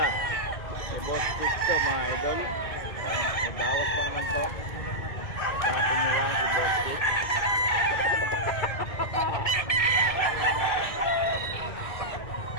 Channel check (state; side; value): late; right; 1.7 ms